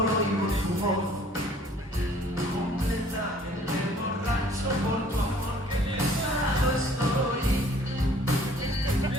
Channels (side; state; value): both; normal; correlation 0.55